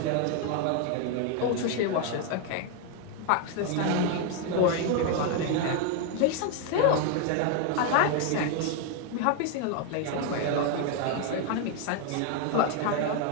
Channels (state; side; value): different; both; correlation 0.01